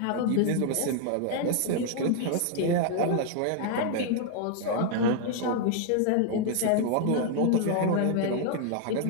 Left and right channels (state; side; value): different; both; correlation 0.00